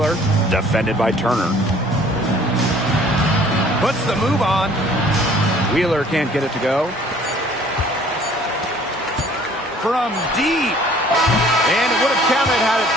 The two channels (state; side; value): normal; both; correlation 0.55